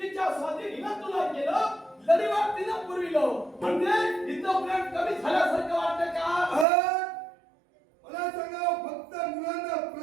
तिच्या स्वाधीन हिनं तुला केलं. लढीवाट तिनं पुरविलं. म्हणजे हिचं प्रेम कमी झाल्यासारखं वाटतं का? मला सांगा, फक्त मुलांना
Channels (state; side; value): drops out; left; at 6.7 s